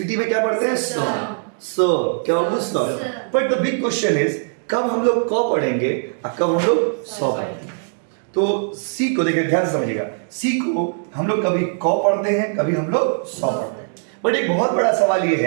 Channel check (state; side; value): silent; left; digital silence